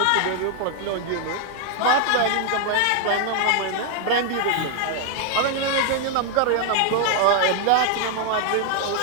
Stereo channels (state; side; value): different; both; correlation 0.00